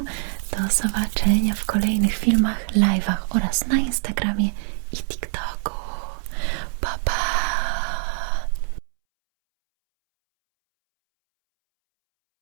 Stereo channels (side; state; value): left; silent; 63 dB below the other